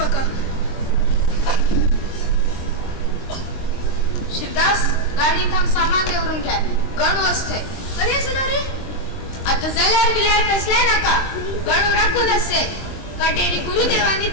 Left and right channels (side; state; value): right; late; 23 ms